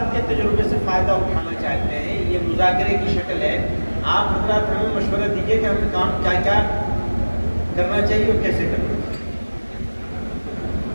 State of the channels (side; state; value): both; inverted; correlation -1.00